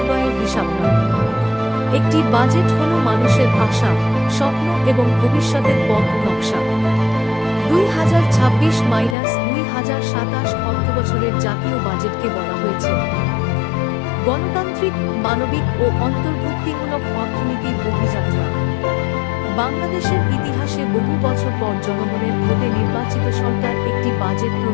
ব্যয়ের হিসাব নয়। একটি বাজেট হলো মানুষের আশা, স্বপ্ন এবং ভবিষ্যতের পথ নকশা। 2026-2027 অর্থবছরের জাতীয় বাজেটকে বলা হয়েছে গণতান্ত্রিক, মানবিক ও অন্তর্ভুক্তিমূলক অর্থনীতির অভিযাত্রা। বাংলাদেশের ইতিহাসে বহু বছর পর জনগণের ভোটে নির্বাচিত সরকার একটি বাজেট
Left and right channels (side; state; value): right; drops out; at 9.2 s